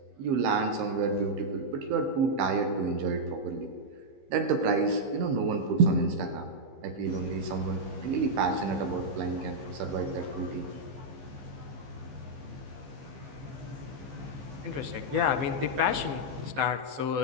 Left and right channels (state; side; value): late; left; 15 ms